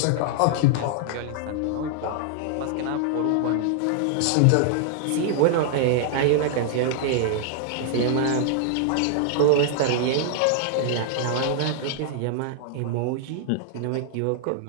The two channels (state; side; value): different; both; correlation -0.01